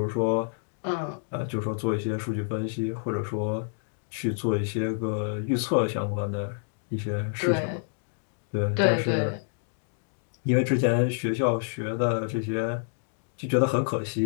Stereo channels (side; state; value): right; silent; digital silence